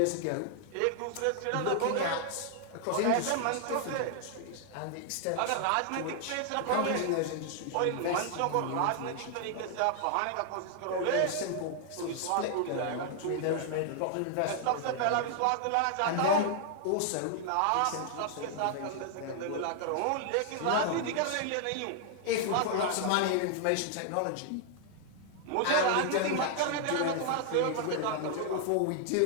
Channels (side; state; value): both; different; correlation 0.00